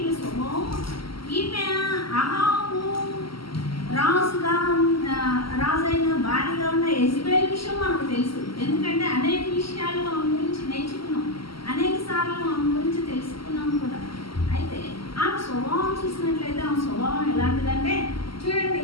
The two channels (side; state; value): right; late; 0.74 ms